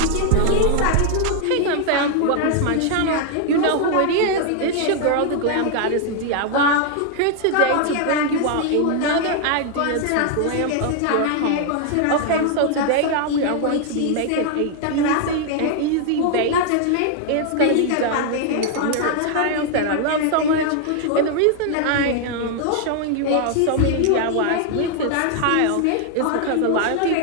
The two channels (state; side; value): different; both; correlation 0.00